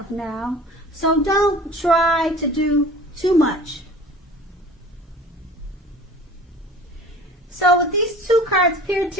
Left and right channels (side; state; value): both; normal; correlation 0.43